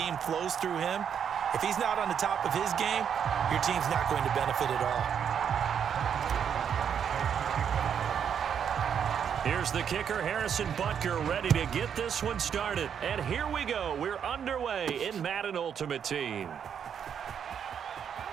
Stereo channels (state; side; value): quieter; left; 8.0 dB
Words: flows through him, if he's not on the top of his game, your team's not going to benefit at all. Here's the kicker, Harrison Butker, ready to get this one started. And here we go. We're underway in Madden Ultimate Team.